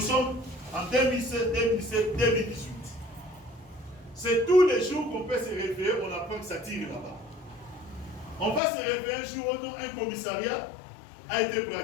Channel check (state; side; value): drops out; right; at 8.6 s